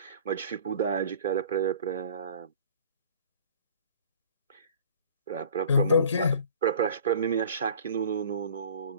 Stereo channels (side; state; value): both; inverted; correlation -0.46